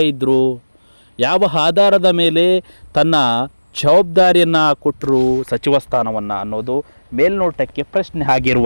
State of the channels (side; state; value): both; inverted; correlation -1.00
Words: ಇದ್ದರು, ಯಾವ ಆಧಾರದ ಮೇಲೆ ತನ್ನ ಜವಾಬ್ದಾರಿಯನ್ನು ಕೊಟ್ಟರು ಸಚಿವ ಸ್ಥಾನವನ್ನು ಅನ್ನೋದು ಮೇಲ್ನೋಟಕ್ಕೆ ಪ್ರಶ್ನೆ